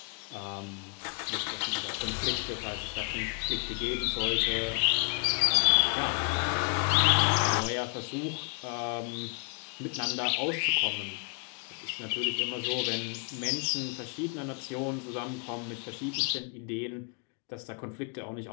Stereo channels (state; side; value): quieter; right; 35.4 dB